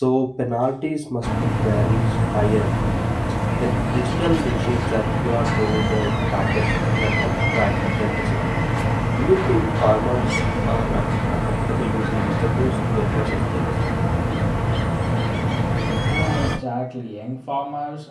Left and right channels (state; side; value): identical; both; correlation 1.00